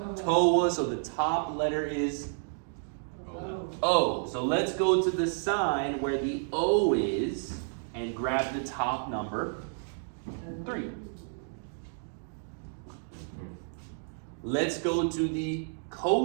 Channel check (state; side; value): silent; left; digital silence